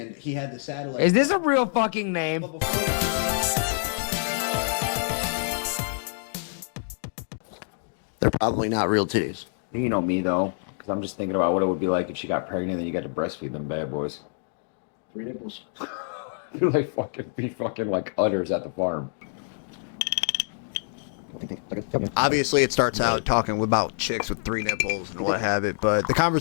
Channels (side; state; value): right; silent; digital silence